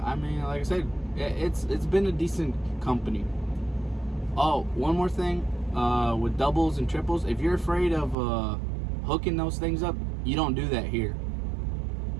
I mean, like I said, it's been a decent company. Oh, one more thing, with doubles and triples, if you're afraid of hooking those things up, you don't do that here.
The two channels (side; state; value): left; drops out; at 8.2 s